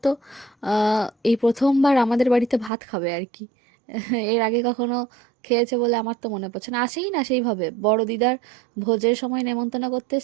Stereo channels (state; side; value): drops out; left; at 2.7 s